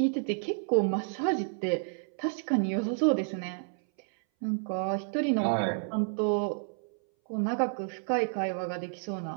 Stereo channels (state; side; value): silent; left; 58 dB below the other